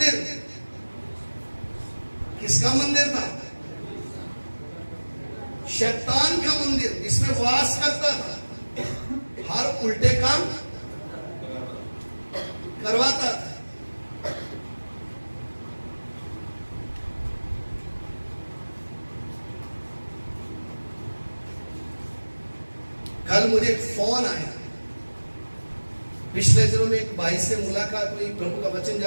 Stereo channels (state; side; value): inverted; both; correlation -1.00